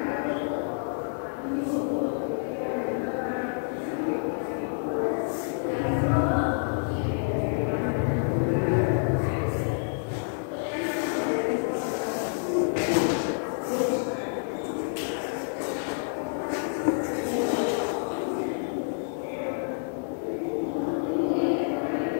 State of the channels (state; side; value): silent; right; digital silence